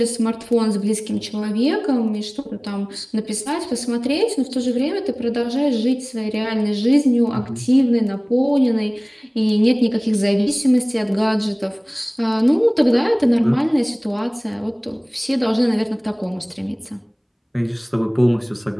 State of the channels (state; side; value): identical; both; correlation 1.00